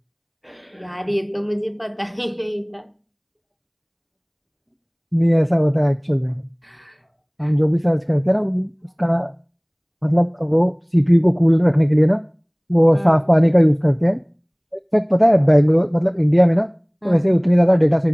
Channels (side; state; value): both; identical; correlation 1.00